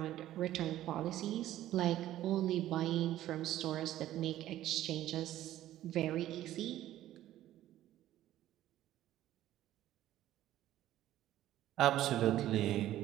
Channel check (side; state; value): left; quieter; 13.6 dB